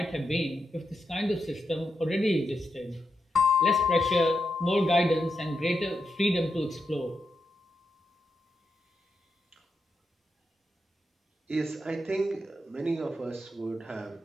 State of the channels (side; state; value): both; normal; correlation 0.85